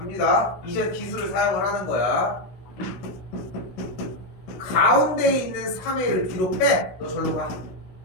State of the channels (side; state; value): right; late; 16 ms